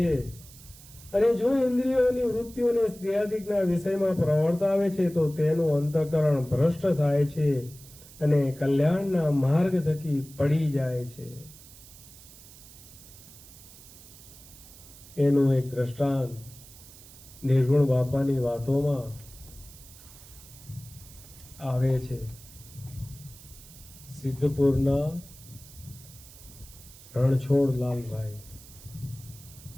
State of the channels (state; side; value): noise; right; hiss, 20 dB below the sound